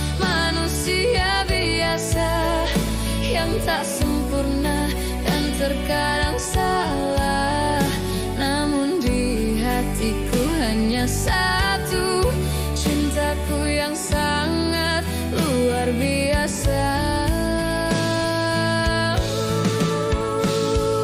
manusia biasa, yang tak sempurna dan terkadang salah. Namun di hatiku hanya satu, cintaku yang sangat luar biasa.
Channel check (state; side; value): identical; both; correlation 1.00